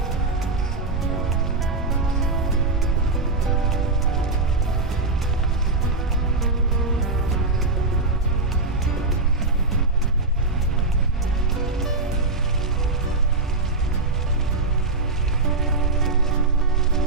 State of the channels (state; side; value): quieter; left; 3.4 dB